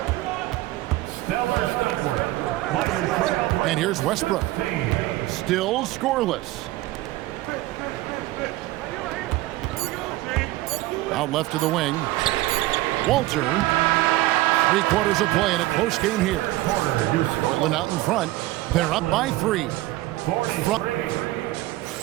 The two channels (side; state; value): left; quieter; 17.6 dB